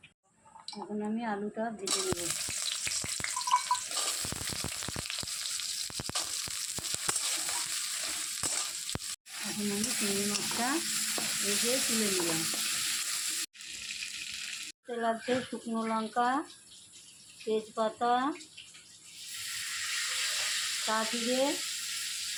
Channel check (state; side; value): identical; both; correlation 1.00